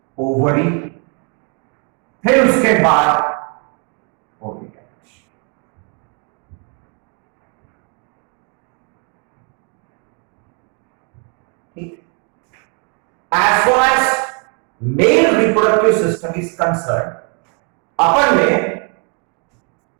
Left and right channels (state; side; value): quieter; left; 37.9 dB